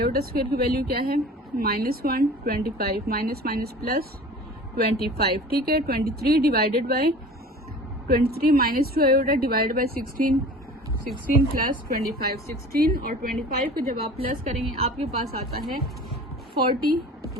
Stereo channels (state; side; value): normal; both; correlation 0.41